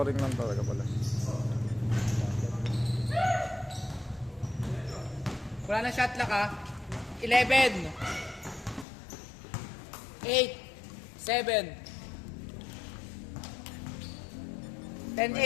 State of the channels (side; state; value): right; drops out; at 8.8 s